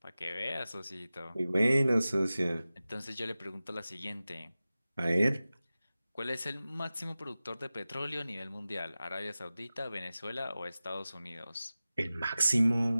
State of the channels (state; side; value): inverted; both; correlation -0.96